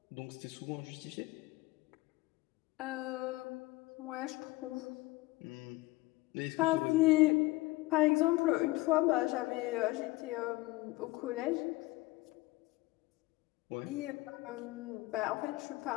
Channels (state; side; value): quieter; right; 20.7 dB